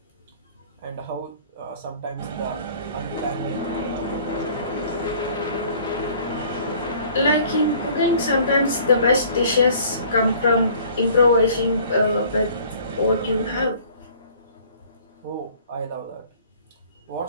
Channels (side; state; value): both; inverted; correlation -0.52